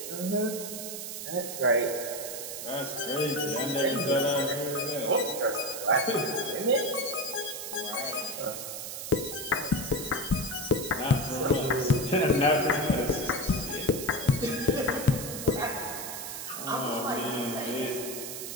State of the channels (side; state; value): right; noise; hiss, 7 dB below the sound